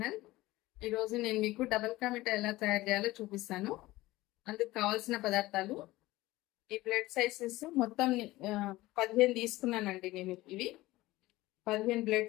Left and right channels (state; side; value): quieter; right; 18.4 dB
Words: ఈరోజు నేను మీకు డబల్ కా మిఠాయి ఎలా తయారు చేయాలో చూపిస్తాను. అందుకు కావాల్సిన పదార్థాలు ఈ బ్లడ్ సైజెస్ మొత్తం 15 తీసుకున్నానండి. నేను ఇవి 15 బ్లడ్